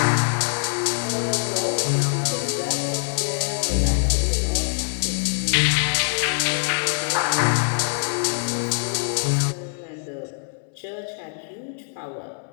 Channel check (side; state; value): right; silent; digital silence